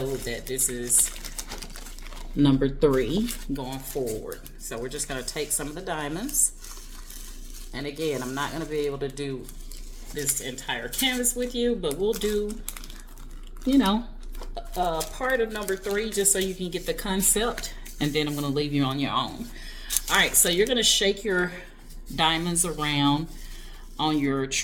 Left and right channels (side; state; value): both; identical; correlation 1.00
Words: that this is number 3 going forward. So we're just gonna take some of the diamonds, and again, I'm not gonna be able to do this entire canvas with you, but we'll do, you know, part of number 3 just so you can get the concept, and then I'm going to leave you on your own. All right, so you're going to shake your diamonds around on your